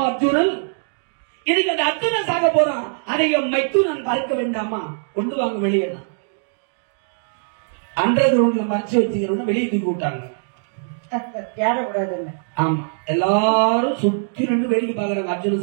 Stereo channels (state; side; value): silent; left; digital silence